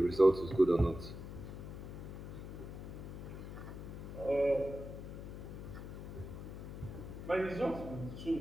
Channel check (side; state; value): left; noise; hum, 9 dB below the sound